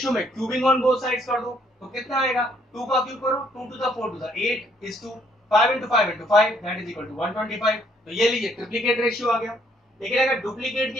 में क्यूबिंग ऑन बोथ साइड्स कर दो। तो कितना आएगा, 2 का क्यूब करो, 2 to the 4 to the 8 is 2, 5 into 5 into 5 that is equal to 125। तो ये लीजिए ट्रिप्लीकेट रेशियो आ गया। लेकिन अगर डुप्लीकेट की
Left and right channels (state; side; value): normal; both; correlation 0.67